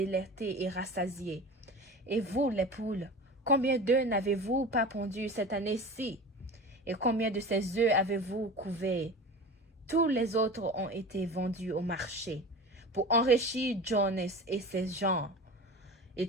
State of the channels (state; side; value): normal; both; correlation 0.34